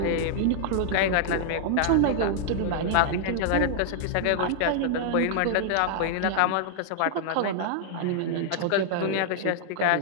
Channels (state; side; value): different; both; correlation -0.01